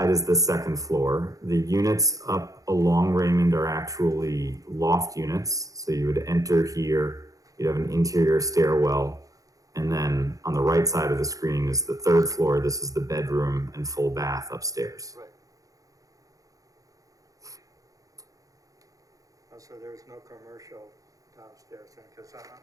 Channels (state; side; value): late; left; 0.17 ms